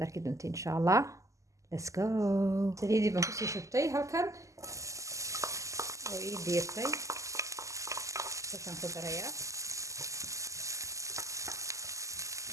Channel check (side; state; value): left; late; 0.16 ms